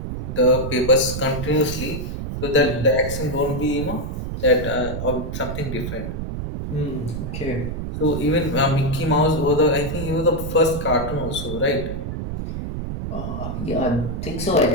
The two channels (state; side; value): noise; right; rumble, 5 dB below the sound